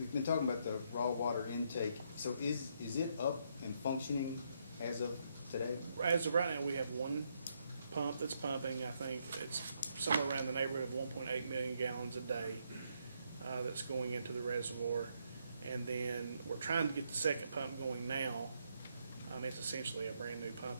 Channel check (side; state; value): both; inverted; correlation -0.75